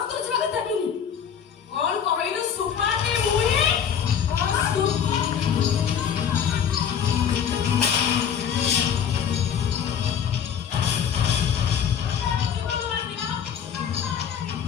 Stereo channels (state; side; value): quieter; right; 8.1 dB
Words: তো যাবে দেবিনি কোন কইলো সুপাতে মুই আমার সুপা